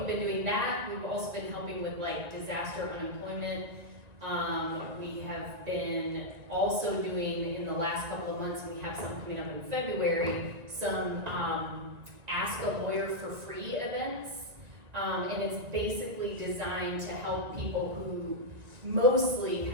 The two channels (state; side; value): late; left; 1.9 ms